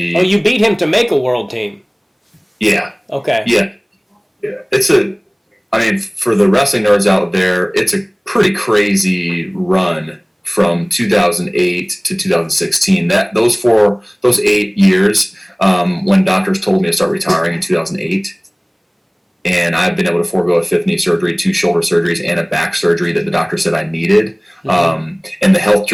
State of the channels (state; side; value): identical; both; correlation 1.00